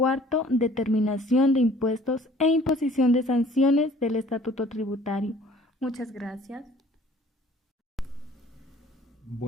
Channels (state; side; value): normal; both; correlation 0.53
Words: determinación de impuestos e imposición de sanciones del Estatuto Tributario. Muchas gracias.